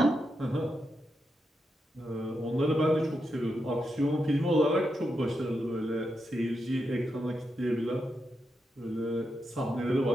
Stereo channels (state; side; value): normal; both; correlation 0.85